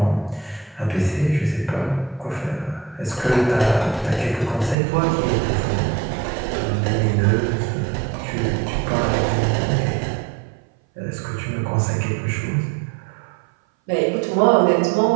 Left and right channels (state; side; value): drops out; left; at 4.8 s